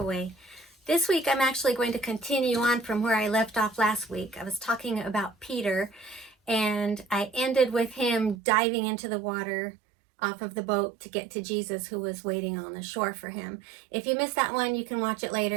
This week I'm actually going to continue on from where I left off last week. I was talking about Peter and I ended with him diving into the water off of the boat to get to Jesus, who was waiting on the shore for him. If you missed that one, you can watch it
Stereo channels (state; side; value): drops out; left; at 8.3 s